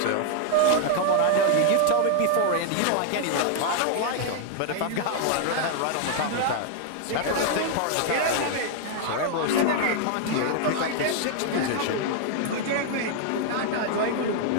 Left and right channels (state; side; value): different; both; correlation 0.00